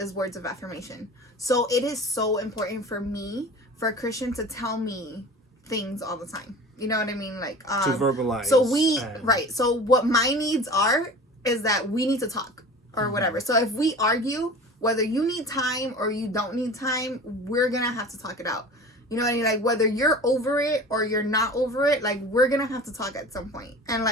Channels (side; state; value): both; normal; correlation 0.38